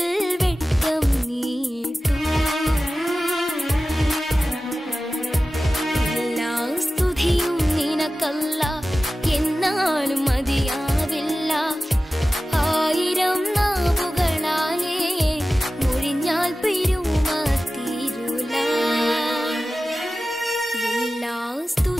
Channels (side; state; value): both; normal; correlation 0.95